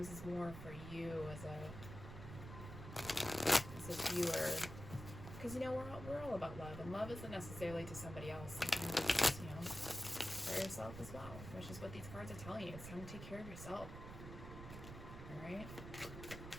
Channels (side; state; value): right; noise; rumble, 10 dB below the sound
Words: is more for you as a viewer, because you know we're all about love, and love isn't necessarily to somebody else. Sometimes it's, you know, for yourself as well, which is what these cards are telling you. It's time to take care of yourself. All right.